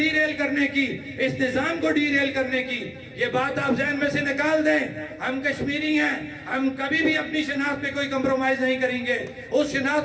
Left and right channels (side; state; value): both; identical; correlation 1.00